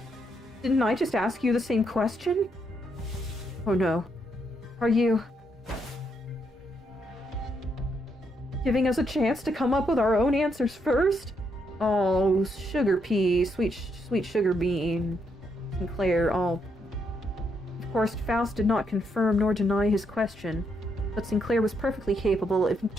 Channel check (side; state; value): both; normal; correlation 0.77